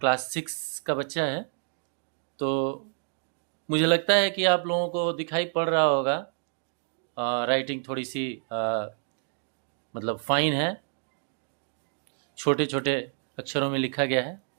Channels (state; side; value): silent; left; digital silence